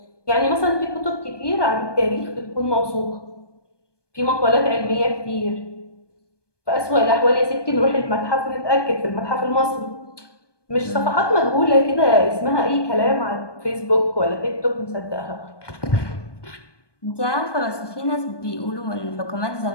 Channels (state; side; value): late; right; 1.2 ms